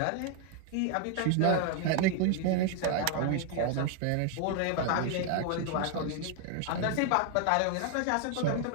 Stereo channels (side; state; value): both; different; correlation 0.00